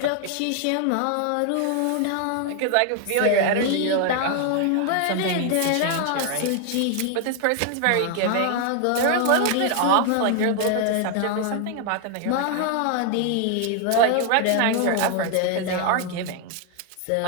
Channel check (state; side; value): different; both; correlation 0.00